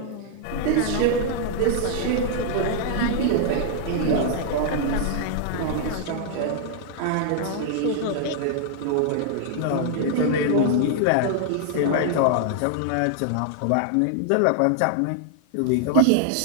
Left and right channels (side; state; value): both; different; correlation 0.00